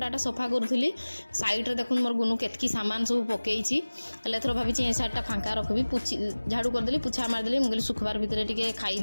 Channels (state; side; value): inverted; both; correlation -1.00